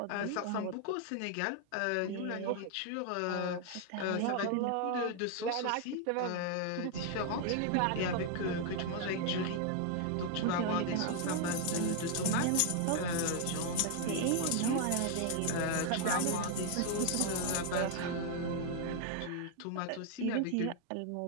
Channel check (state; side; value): different; both; correlation 0.00